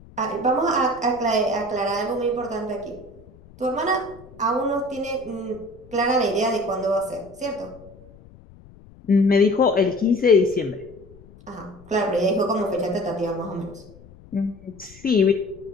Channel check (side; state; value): left; noise; rumble, 22 dB below the sound